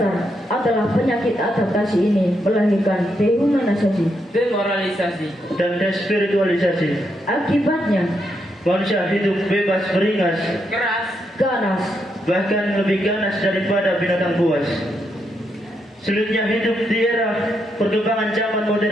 adalah penyakit adaptasi ini melahirkan dehumanisasi. Demoralisasi. Dan despiritualisasi. Akibatnya, Manusia hidup bebas beringas, Keras. ganas, bahkan lebih ganas daripada binatang buas. Sulitnya hidup di era perkembangan zaman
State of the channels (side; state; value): both; normal; correlation 0.80